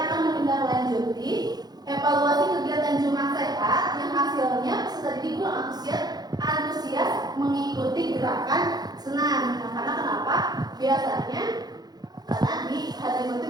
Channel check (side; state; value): left; late; 0.19 ms